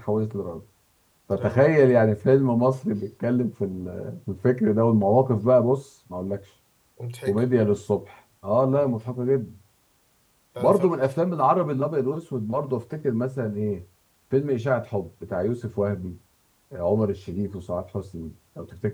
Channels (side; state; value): both; identical; correlation 1.00